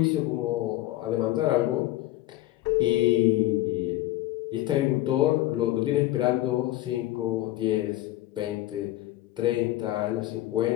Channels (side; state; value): right; quieter; 15.8 dB